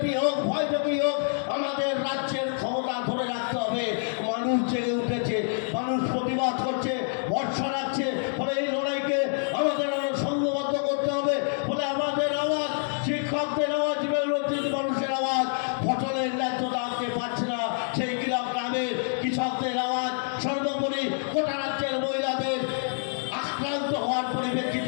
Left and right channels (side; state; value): right; silent; digital silence